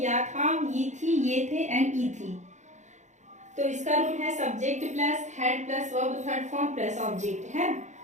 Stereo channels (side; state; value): left; late; 0.34 ms